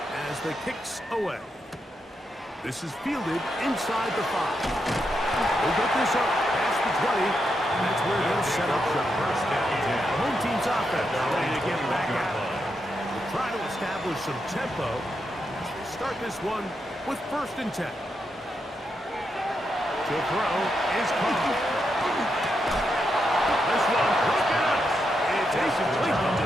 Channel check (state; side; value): normal; both; correlation 0.83